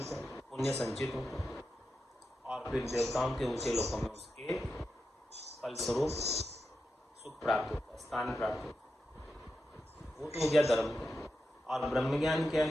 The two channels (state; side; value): normal; both; correlation 0.89